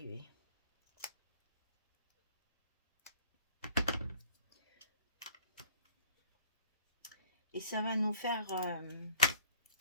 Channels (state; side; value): inverted; both; correlation -0.54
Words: Et ça va nous faire